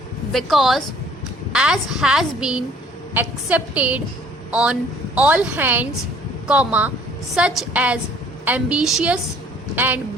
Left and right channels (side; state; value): both; normal; correlation 0.57